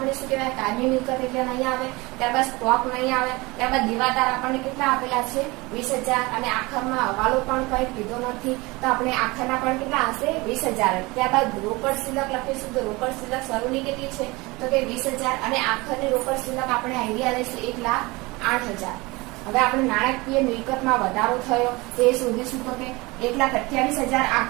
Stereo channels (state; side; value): quieter; left; 23.4 dB